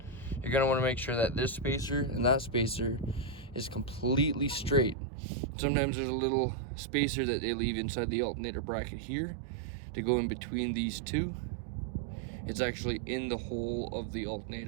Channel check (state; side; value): drops out; left; at 5.0 s